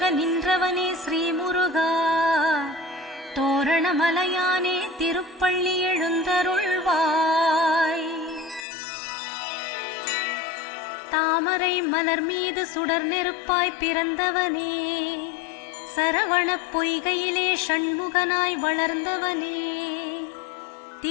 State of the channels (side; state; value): right; drops out; at 8.7 s